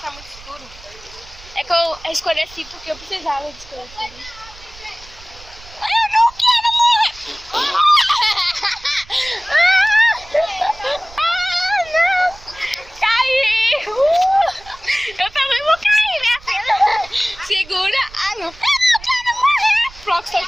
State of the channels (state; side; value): noise; right; rumble, 21 dB below the sound